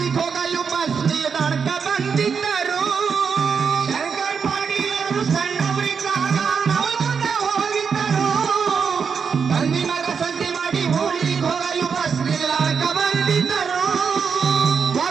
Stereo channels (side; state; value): left; quieter; 6.1 dB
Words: ಹೋಗಲು ಬಸ್ ನಿಲ್ದಾಣಕ್ಕ ಬಂದಿದ್ದರು. ಶಂಕರ್ ಪಾಟೀಲರು ಸಣ್ಣವರಿದ್ದಾಗ ನವಲಗುಂದಕ್ಕೆ ಹೋಗಿದ್ದರು. ತಂದಿ ಮಗ ಸಂತಿ ಮಾಡಿ ಊರಿಗೆ ಹೋಗಲು ಬಸ್ ನಿಲ್ದಾಣಕ್ಕ ಬಂದಿದ್ದರು.